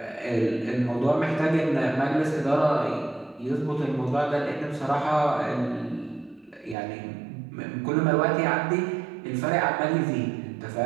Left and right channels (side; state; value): left; drops out; at 6.8 s